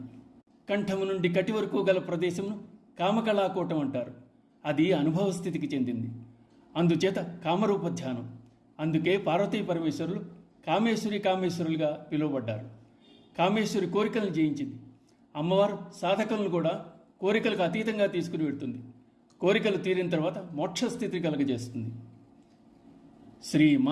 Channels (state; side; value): identical; both; correlation 1.00